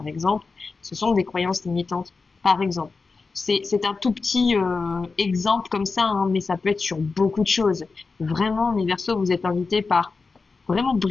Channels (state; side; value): quieter; right; 4.3 dB